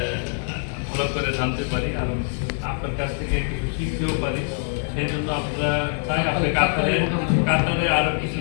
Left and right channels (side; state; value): right; silent; 63 dB below the other